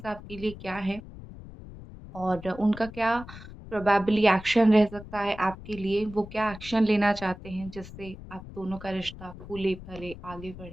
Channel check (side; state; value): left; noise; rumble, 15 dB below the sound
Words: आपके लिए क्या है और उनका क्या प्रोबेबली एक्शन रह सकता है आपके लिए। वो क्या एक्शन लेना चाहते हैं जिससे आप दोनों का रिश्ता फूले फले आगे